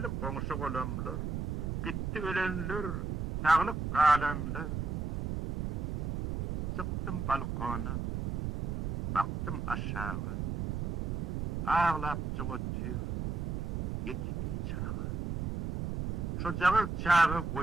koňuşy golamlar, gitti ölenler, sağlık kalanlar. Çıktım balkona, baktım aşağı, ağlap çıgıtır, yetimli çağı. Şu jağı çağı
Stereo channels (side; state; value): right; noise; rumble, 1 dB below the sound